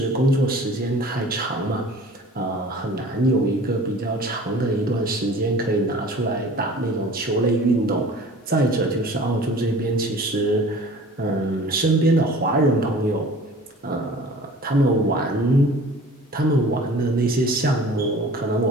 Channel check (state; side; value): normal; both; correlation 0.45